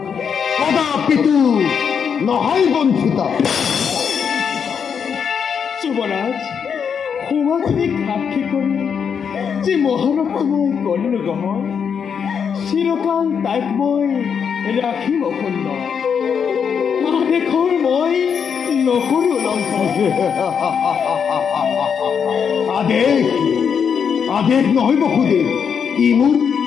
নহয় বঞ্চিতা। যুৱৰাজ, সমাজে সাক্ষী কৰি যি মহানতা মই কৰিলো গ্ৰহণ, চিৰকাল তাইক মই ৰাখিম অখণ্ড। আদেশৰ মই নকৰো লংঘন। আদেশ নহয় বসুদেৱ, ই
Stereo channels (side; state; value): right; quieter; 7.0 dB